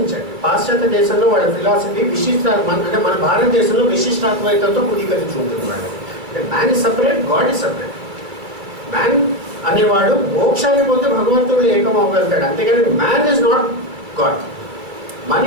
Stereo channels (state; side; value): late; left; 2.3 ms